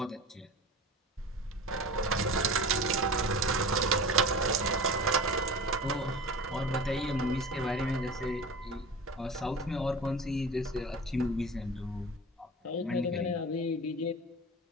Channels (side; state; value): both; normal; correlation 0.35